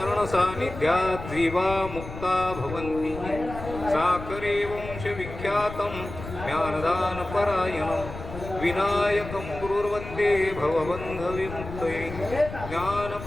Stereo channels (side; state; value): left; noise; rumble, 11 dB below the sound